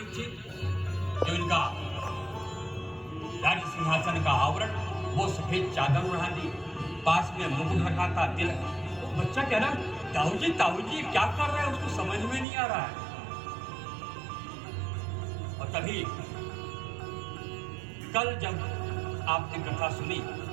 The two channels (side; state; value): left; drops out; at 12.5 s